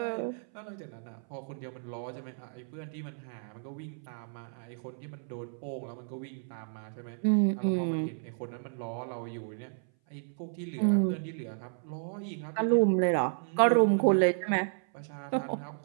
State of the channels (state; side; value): silent; left; 56 dB below the other